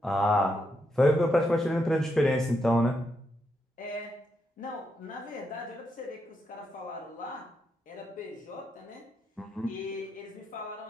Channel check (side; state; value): both; normal; correlation 0.81